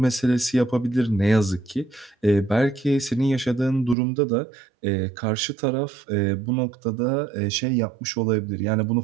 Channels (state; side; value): drops out; left; at 4.0 s